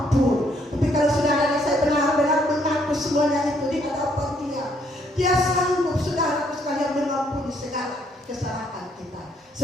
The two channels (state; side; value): normal; both; correlation 0.69